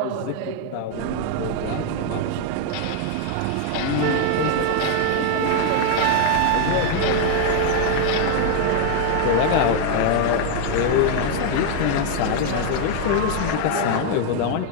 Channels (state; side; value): different; both; correlation 0.00